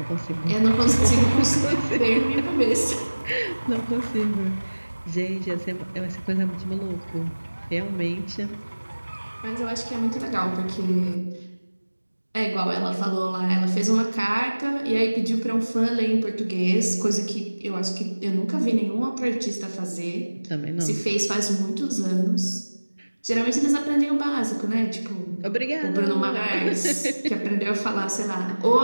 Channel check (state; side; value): inverted; both; correlation -1.00